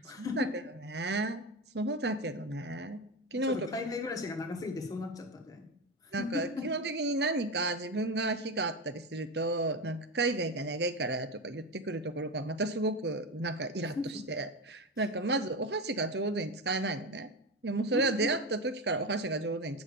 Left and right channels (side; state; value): both; normal; correlation 0.18